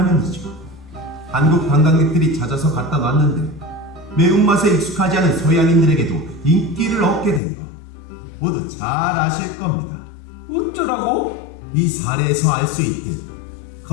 한국 관광객들이 찾아서 갖다 놨는데 매운맛에 익숙하지 않은 서양인들에게도 인기를 얻게 된 것 모두 잘 아실 겁니다. 어쩌라고? 이 사례에서 알 수 있듯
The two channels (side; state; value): right; drops out; at 7.4 s